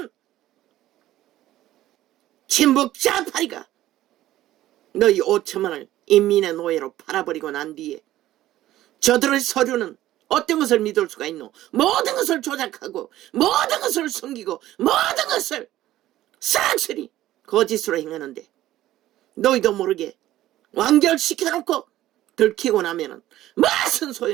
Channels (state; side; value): quieter; left; 14.4 dB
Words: 친북 좌파리가 너희 5천만을 인민의 노예로 팔아버리고 난 뒤에 저들의 서류는 어떤 것을 믿을 수가 있노? 모든 것을 조작하고 모든 것을 숨기고 모든 것을 싹쓸이 거짓으로 행하는데 너희도 모르게 완결시켜놓고 들키고 나면은 무슨